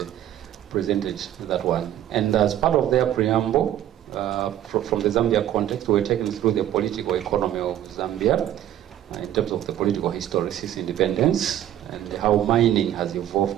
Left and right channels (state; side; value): quieter; left; 11.7 dB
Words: presented that one. And as part of their preamble, from the Zambia context, we were taken through the political economy of Zambia, in terms of the political history since independence and how mining has